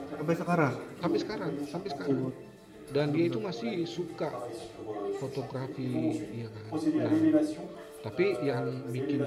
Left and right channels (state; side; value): identical; both; correlation 1.00